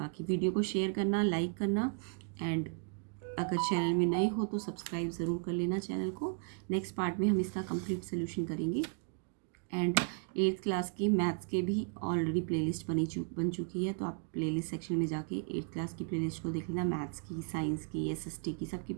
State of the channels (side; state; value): left; quieter; 39.7 dB